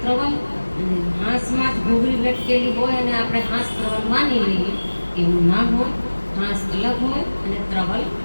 ત્રવલ. અને હાંસમાં જ ઘૂઘરી લટકેલી હોય અને આપણે હાંસ ત્રવલ માની લઈએ એવું ના હોય. હાંસ અલગ હોય અને ત્રવલ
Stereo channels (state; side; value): inverted; both; correlation -1.00